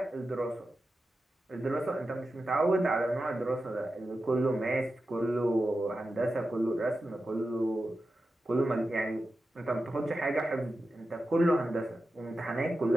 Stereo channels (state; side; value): normal; both; correlation 0.91